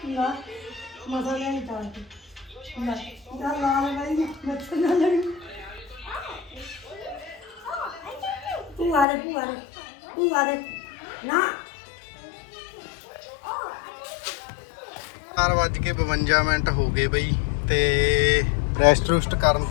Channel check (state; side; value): drops out; right; at 9.1 s